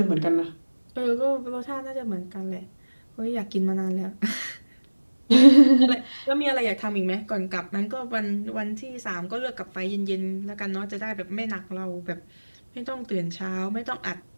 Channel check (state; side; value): inverted; both; correlation -1.00